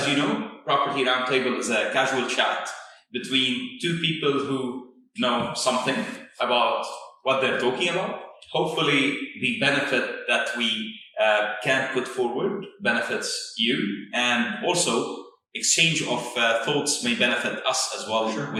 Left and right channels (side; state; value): both; identical; correlation 1.00